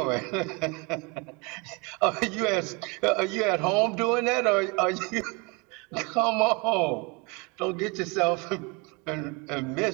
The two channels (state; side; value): quieter; left; 29.2 dB